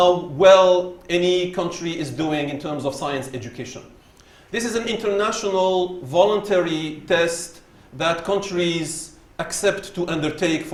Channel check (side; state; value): both; identical; correlation 1.00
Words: well any country is doing in terms of science education. This is an international voluntary test that countries accept to undertake